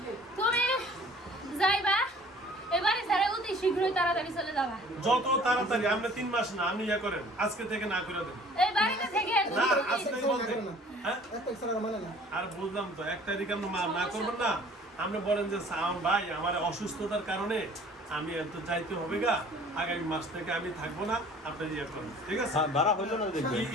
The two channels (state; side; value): normal; both; correlation 0.51